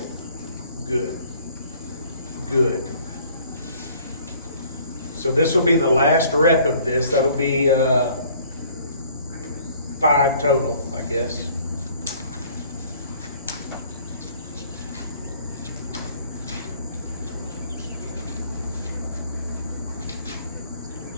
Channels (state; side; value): inverted; both; correlation -0.56